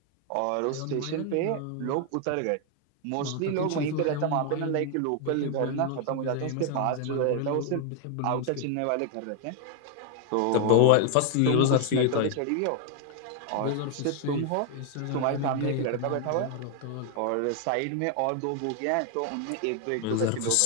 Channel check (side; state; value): both; different; correlation 0.00